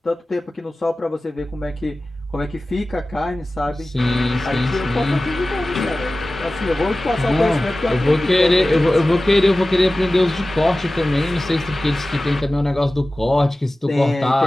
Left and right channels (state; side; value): normal; both; correlation 0.96